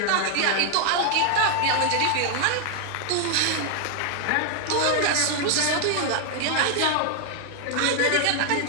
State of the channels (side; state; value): both; different; correlation 0.00